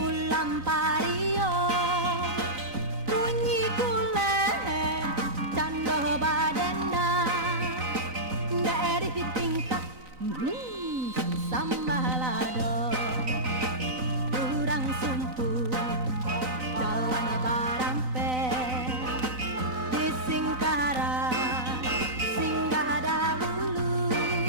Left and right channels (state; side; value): late; left; 3.9 ms